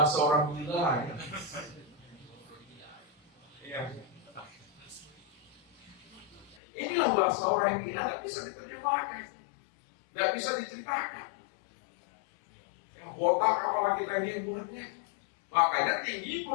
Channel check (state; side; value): drops out; right; at 6.6 s